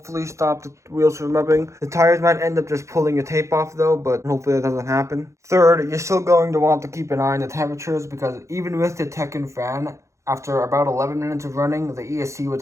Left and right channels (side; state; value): left; late; 0.14 ms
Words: stop the wheels from rubbing. The tires might end up just pulling the tape off though, but hopefully that doesn't happen. Third, you're still going to want to keep an eye on the temperatures because even with the Tekken fan, after about 11 minutes of running, the ESC